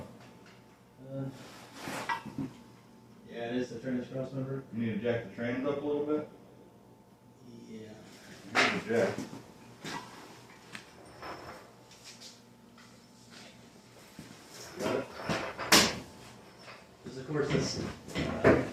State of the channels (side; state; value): both; identical; correlation 1.00